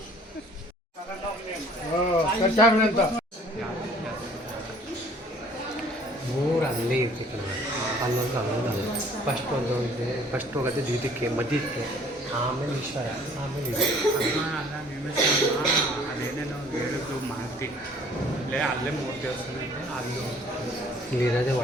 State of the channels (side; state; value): both; normal; correlation 0.55